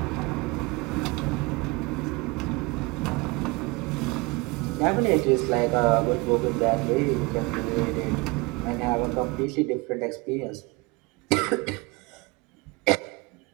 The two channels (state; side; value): quieter; left; 25.9 dB